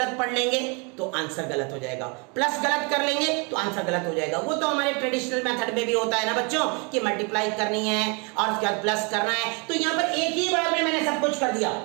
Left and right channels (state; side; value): quieter; left; 32.9 dB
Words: पढ़ लेंगे तो आंसर गलत हो जाएगा, प्लस गलत कर लेंगे तो आंसर गलत हो जाएगा। वो तो हमारे ट्रेडिशनल मेथड में भी होता है ना बच्चों कि मल्टीप्लाई करनी है और उसके बाद प्लस करना है, तो यहाँ पर एक ही बार में मैंने सब कुछ कर दिया।